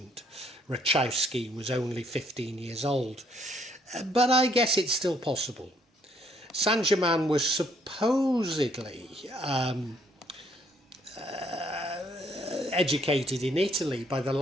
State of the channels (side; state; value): both; normal; correlation 0.66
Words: Rakowski was only 15 years old. But I guess it's still possible. Saint Germain was supposedly educated in Italy by the